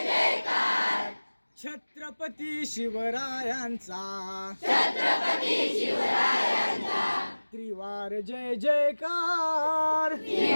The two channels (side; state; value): both; inverted; correlation -1.00